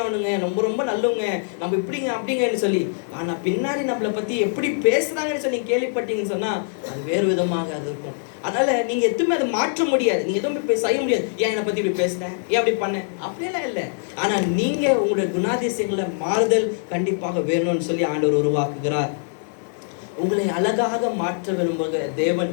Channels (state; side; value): silent; right; digital silence